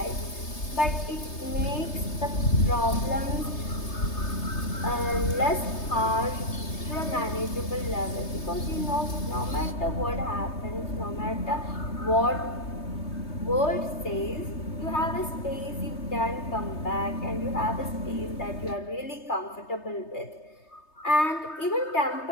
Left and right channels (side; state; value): right; late; 3.3 ms